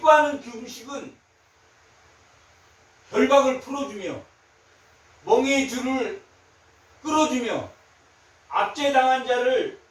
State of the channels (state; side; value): identical; both; correlation 1.00